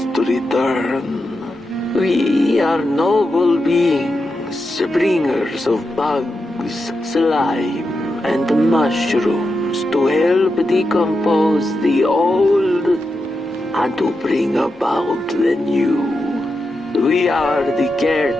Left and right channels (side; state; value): both; normal; correlation 0.88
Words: return. We are noble beings, bringers of bugs, slime, and mushrooms to help decompose the old and to bring about the new. We are the